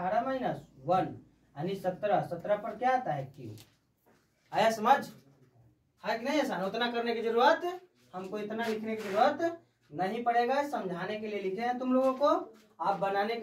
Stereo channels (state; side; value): identical; both; correlation 1.00